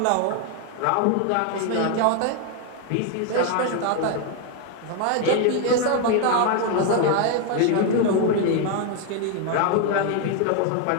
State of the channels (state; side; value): different; both; correlation 0.01